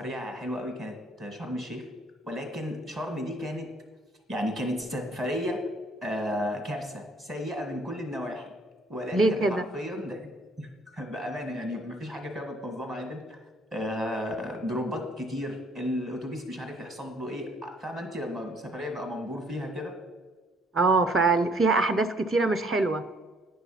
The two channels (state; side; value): normal; both; correlation 0.63